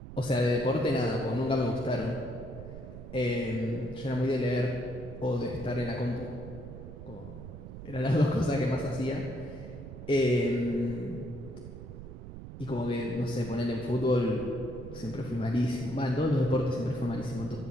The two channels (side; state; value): right; noise; rumble, 12 dB below the sound